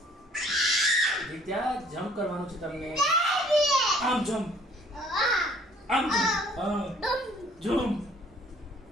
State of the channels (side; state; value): both; normal; correlation 0.58